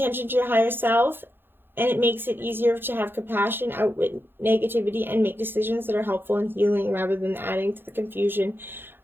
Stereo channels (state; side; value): late; left; 0.10 ms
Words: to your higher self, and it makes it easier to have compassion, outwit negativity, and make decisions that are helpful and healing rather than adding to the confusion